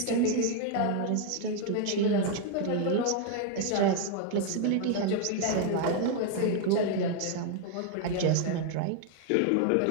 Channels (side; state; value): both; different; correlation 0.00